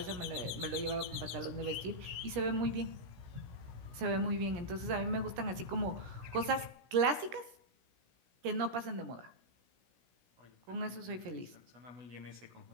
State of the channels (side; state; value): left; late; 16 ms